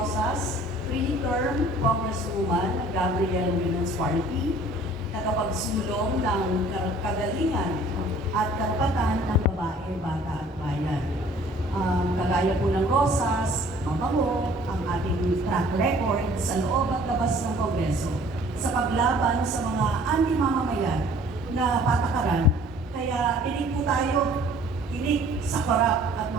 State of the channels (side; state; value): both; normal; correlation 0.53